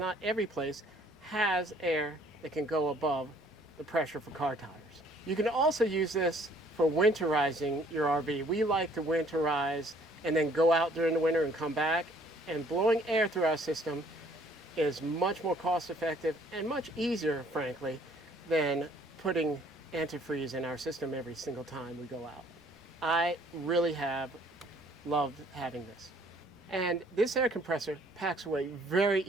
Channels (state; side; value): normal; both; correlation 0.60